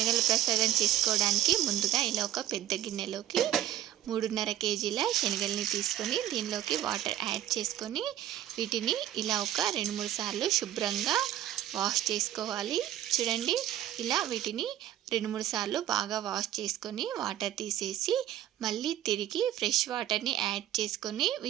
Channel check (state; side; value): quieter; left; 12.6 dB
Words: ప్రసాదం చేసుకోవడానికి ముందుగా ఇలా ఒక పెద్ద గిన్నెలోకి 3.5 కేజీల శనగల్ని తీసుకొని దీనిలోకి వాటర్ యాడ్ చేసుకొని వీటిని ఇలా ఒక 2-3 సార్లు శుభ్రంగా వాష్ చేసుకోవాలి. చూడండి, ఇలా వీటిని 2-3 సార్లు బాగా వాష్ చేసుకొని వాటర్ తీసేసి మళ్ళీ తిరిగి ఫ్రెష్ వాటర్ని యాడ్ చేసుకొని